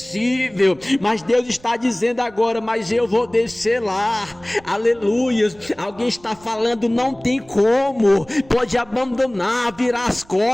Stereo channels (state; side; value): noise; right; rumble, 26 dB below the sound